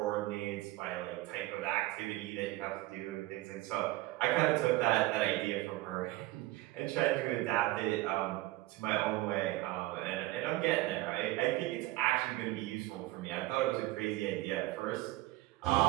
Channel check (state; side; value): quieter; left; 18.5 dB